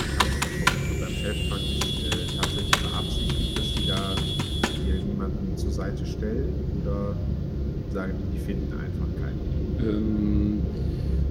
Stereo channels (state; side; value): identical; both; correlation 1.00